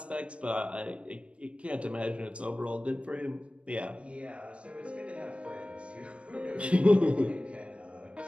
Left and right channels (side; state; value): left; late; 0.060 ms